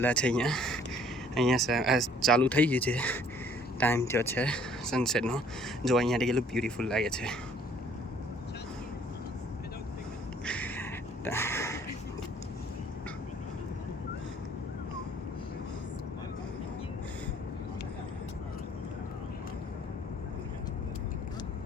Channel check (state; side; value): normal; both; correlation 0.58